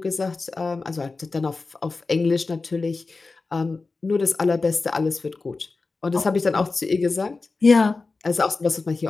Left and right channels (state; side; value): quieter; right; 3.9 dB